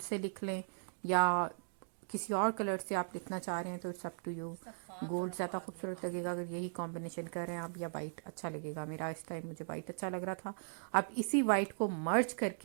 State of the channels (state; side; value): silent; left; digital silence